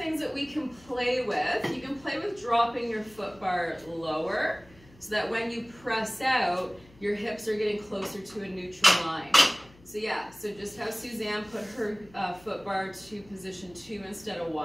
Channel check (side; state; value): left; noise; hum, 25 dB below the sound